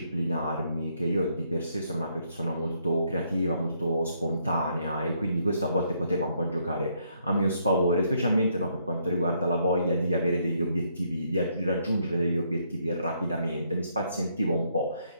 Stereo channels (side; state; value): both; inverted; correlation -0.72